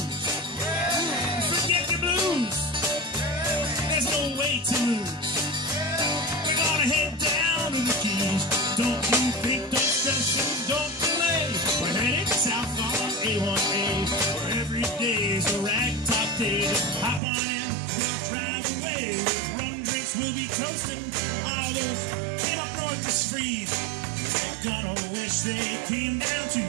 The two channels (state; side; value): drops out; left; at 17.2 s